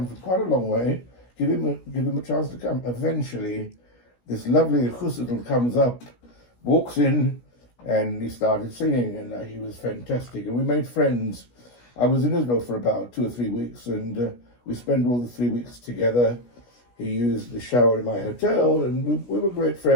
from quite a long way. Give him a chance to come. Eventually, this lovely chussidl comes up, walks in, and he started singing, and he was fantastic. And we made friends. I was in Israel for about 2 or 3 weeks, and we spent all the 3 weeks together. He used the shower in my hotel, and we were great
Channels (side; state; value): right; late; 17 ms